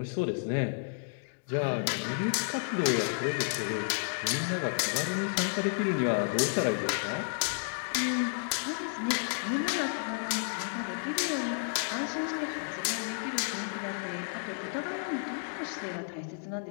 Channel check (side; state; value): right; silent; digital silence